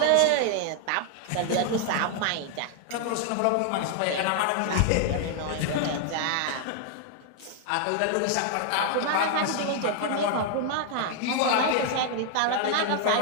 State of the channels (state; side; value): different; both; correlation 0.00